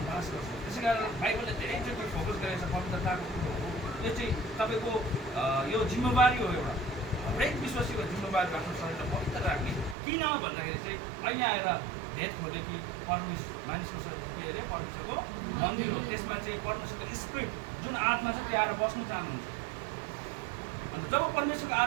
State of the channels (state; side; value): drops out; left; at 10.0 s